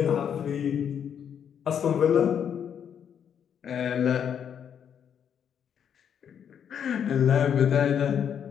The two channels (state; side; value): quieter; right; 8.3 dB